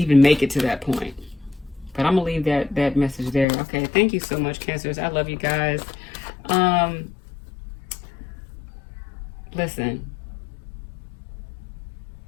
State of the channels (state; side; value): drops out; right; at 3.5 s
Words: it to that point. But I'm gonna leave that message there. Okay, thank you so much, Cancers. I love you guys. Listen,